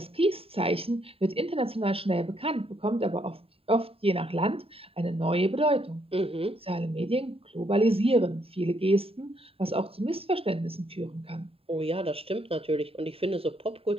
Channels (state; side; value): late; left; 0.27 ms